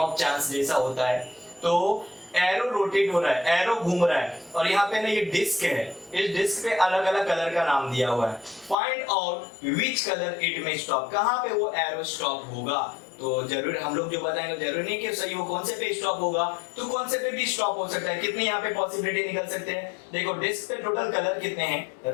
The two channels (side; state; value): right; drops out; at 8.8 s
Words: चांस जैसा होता है। तो एरो रोटेट हो रहा है, एरो घूम रहा है, और यहाँ पे ना ये डिस्क है, इस डिस्क पे अलग अलग कलर का नाम दिया हुआ है। Find out which colour it में स्टॉप, कहाँ पे वो एरो स्टॉप होगा। तो जरूर हम लोग जो बताएंगे जरूरी नहीं कि सही वो कौन से पे स्टॉप होगा, तो कौन से पे भी स्टॉप हो सकता है। कितने यहाँ पे पॉसिबिलिटी निकल सकते हैं, देखो डिस्क पे टोटल कलर कितने हैं,